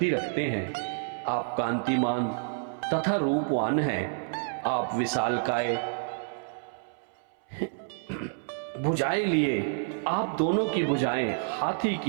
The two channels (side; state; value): left; silent; 59 dB below the other